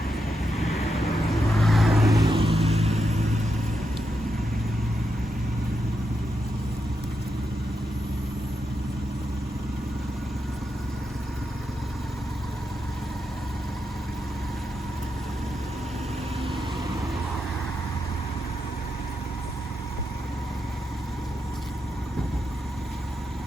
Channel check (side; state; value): both; normal; correlation 0.85